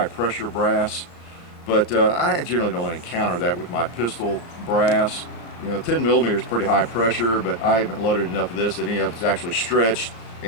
pressure brass. But I generally don't encounter that with my pistol brass. 10 millimeter is pretty high pressure, but I haven't loaded enough of this that any of it's actually stretched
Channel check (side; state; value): right; late; 35 ms